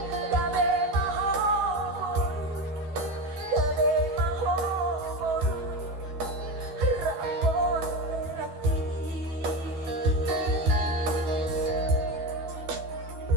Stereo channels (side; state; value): left; late; 12 ms